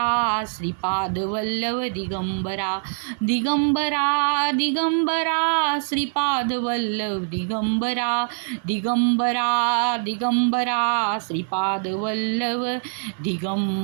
श्रीपाद वल्लभ दिगंबरा दिगंबरा दिगंबरा श्रीपाद वल्लभ दिगंबरा दिगंबरा दिगंबरा श्रीपाद वल्लभ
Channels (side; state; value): left; silent; 61 dB below the other